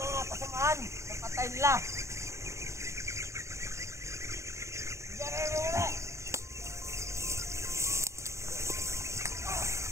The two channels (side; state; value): left; late; 0.14 ms